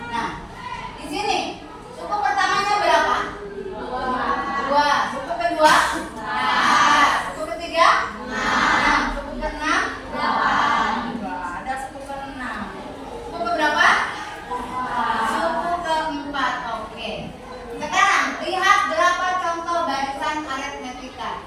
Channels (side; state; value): both; identical; correlation 1.00